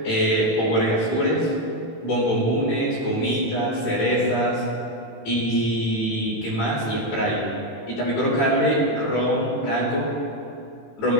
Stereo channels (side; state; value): right; late; 18 ms